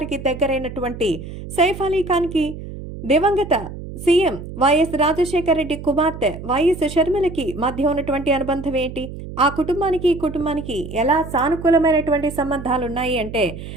దగ్గరైనటువంటి సైఫ్ అలీ ఖాన్ కి దివంగత సీఎం వైఎస్ రాజశేఖర రెడ్డి కుమార్తె వైఎస్ షర్మిలకి మధ్య ఉన్నటువంటి అనుబంధం ఏంటి? ఆ కుటుంబానికి ఈ కుటుంబానికి ఎలా సానుకూలమైనటువంటి సంబంధాలు ఉన్నాయి అంటే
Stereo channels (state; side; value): noise; right; hum, 11 dB below the sound